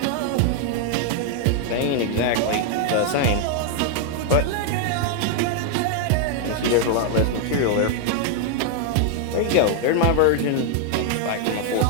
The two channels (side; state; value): both; different; correlation 0.00